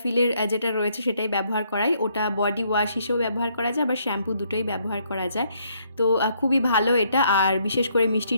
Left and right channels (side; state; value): both; inverted; correlation -0.70